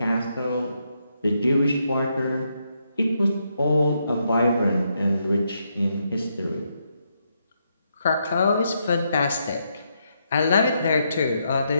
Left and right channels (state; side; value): inverted; both; correlation -0.79